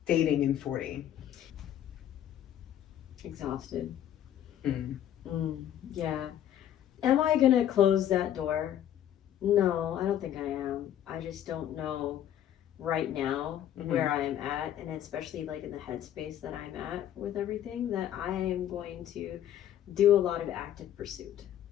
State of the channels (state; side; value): quieter; right; 10.9 dB